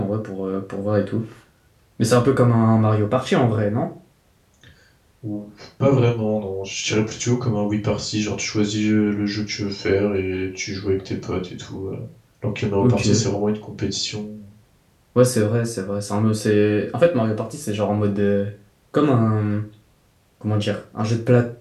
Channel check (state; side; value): identical; both; correlation 1.00